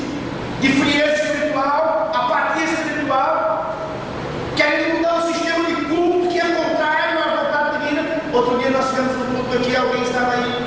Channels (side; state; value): both; identical; correlation 1.00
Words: de frieza espiritual, apatia espiritual, querendo mudar o sistema de culto que é contrário à vontade divina. Outro dia nós tivemos um culto aqui, alguém estava